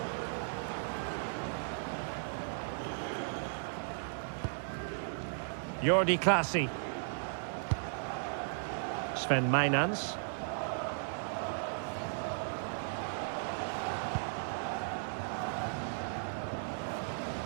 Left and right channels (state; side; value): silent; left; 54 dB below the other